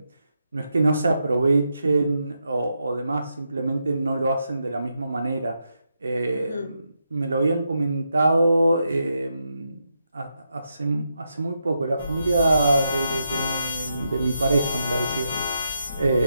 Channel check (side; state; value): both; inverted; correlation -0.83